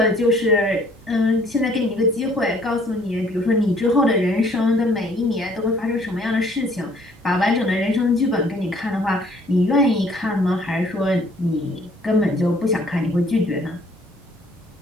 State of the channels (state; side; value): normal; both; correlation 0.60